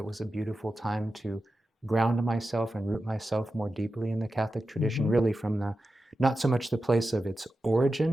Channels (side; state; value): both; normal; correlation 0.92